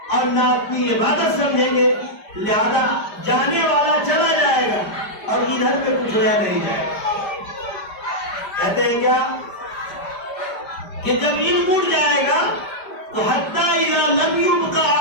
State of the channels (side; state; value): right; late; 5.1 ms